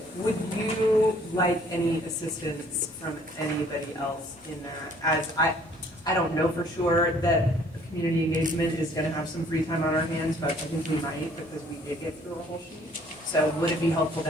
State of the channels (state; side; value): normal; both; correlation 0.59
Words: like any assistance from anybody else in that, as I don't know for sure that community engagement is gonna have some free time on our hands, but I think we might, because we did get through a whole sheet. So would it be helpful